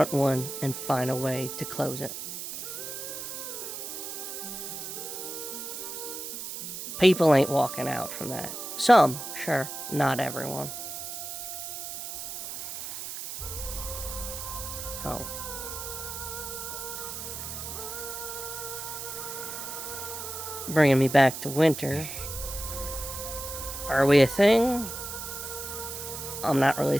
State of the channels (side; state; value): right; noise; hiss, 7 dB below the sound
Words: one and find a way to close it. People ain't walking out from that. Some, sure, not everyone. So, bringing me back to winter. Are we a thing? I'm not really